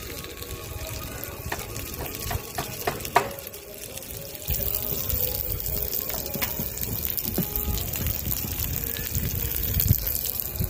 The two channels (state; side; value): identical; both; correlation 1.00